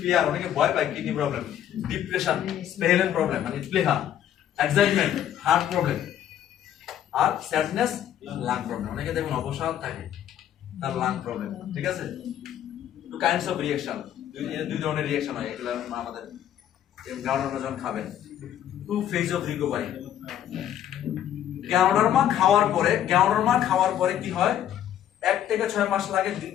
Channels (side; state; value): right; quieter; 10.8 dB